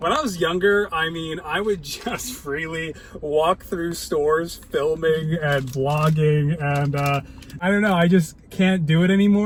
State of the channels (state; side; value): identical; both; correlation 1.00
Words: I was younger, I mean, I would just freely walk through stores filming and vlogging, and I don't know, I just can't do it